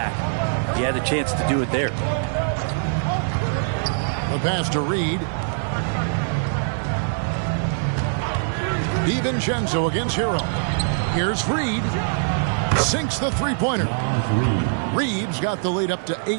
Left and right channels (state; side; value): silent; left; 60 dB below the other